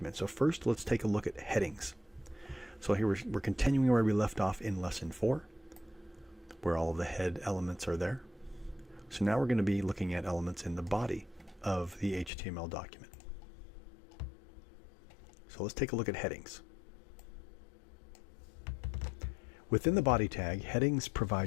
So first, let's take a look at headings. So here we're continuing where we left off in lesson 4, where all of the head elements are there. So now we're going to be looking at elements in the body of the HTML document. So let's take a look at headings. Within the body tag, headings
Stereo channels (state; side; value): drops out; right; at 12.3 s